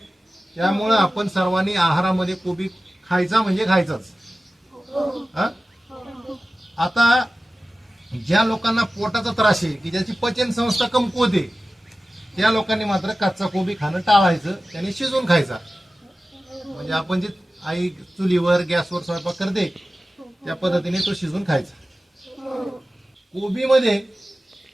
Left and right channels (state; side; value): normal; both; correlation 0.95